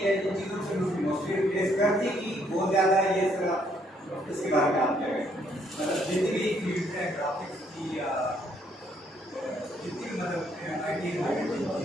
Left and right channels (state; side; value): normal; both; correlation 0.69